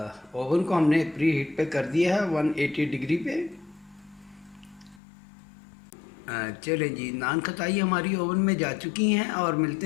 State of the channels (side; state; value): right; drops out; at 5.0 s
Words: ओवन को हमने प्री हीट पे कर दिया है 180 डिग्री पे। चलें जी, नान खताई हमारी ओवन में जा चुकी हैं और